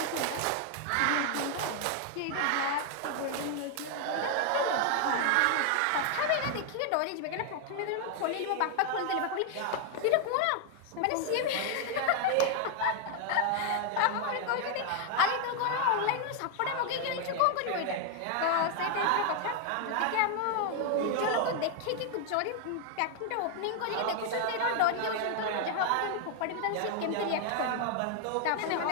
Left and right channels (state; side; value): different; both; correlation 0.00